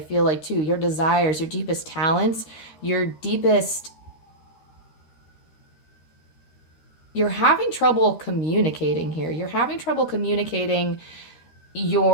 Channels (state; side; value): late; right; 13 ms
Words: like too, your desires, your deepest talents, your deepest, you're having trouble communicating here. You're having trouble communicating